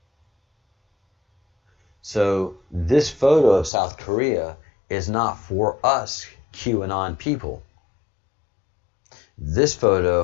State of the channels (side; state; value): right; drops out; at 3.7 s